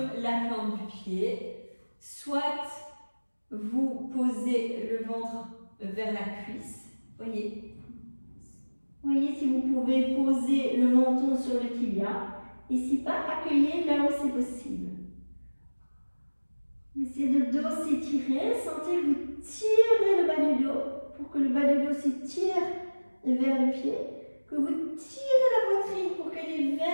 la plante du pied, soit vous posez le ventre vers la cuisse. Voyez, si vous pouvez poser le menton sur le tibia. Et si pas, accueillez là où c'est possible. Essayez de dos s'étirer. Sentez que vous tirez le bas du dos pour que le bas du dos s'étire vers le pied. Que vous tirez la poitrine pour qu'elle est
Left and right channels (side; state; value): both; inverted; correlation -1.00